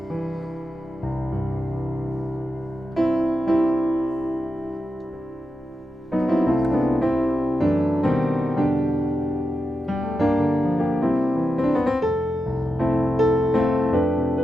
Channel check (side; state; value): both; normal; correlation 0.89